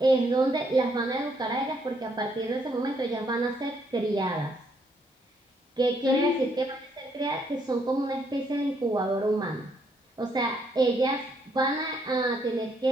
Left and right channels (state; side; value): normal; both; correlation 0.72